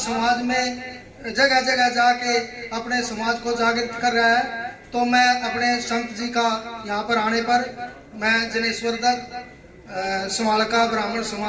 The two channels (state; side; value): identical; both; correlation 1.00